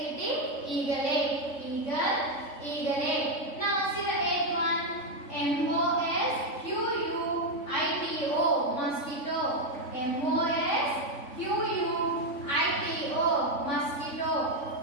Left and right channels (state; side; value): late; right; 3.5 ms